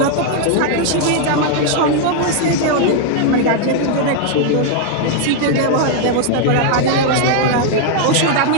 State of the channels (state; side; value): different; both; correlation 0.00